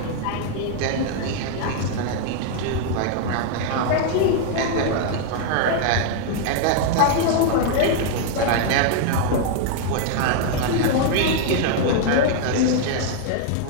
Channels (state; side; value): different; both; correlation 0.00